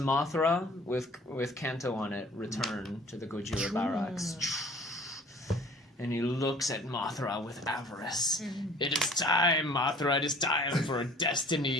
with Kanto on it return to the Gojira barracks. And he looks at Mothra with avarice. It is time, Mothra, it is time for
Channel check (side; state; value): both; normal; correlation 0.50